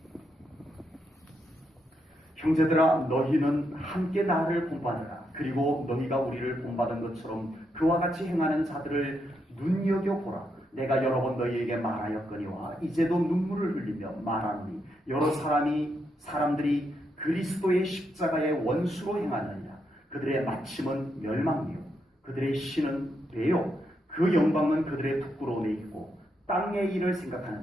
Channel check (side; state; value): both; normal; correlation 0.81